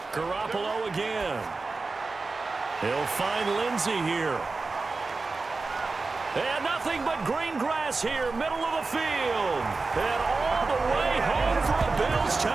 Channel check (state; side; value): quieter; left; 3.8 dB